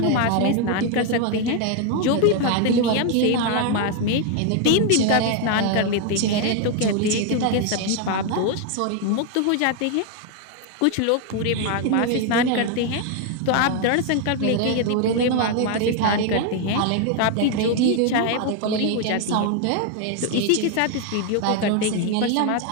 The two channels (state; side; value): different; both; correlation 0.01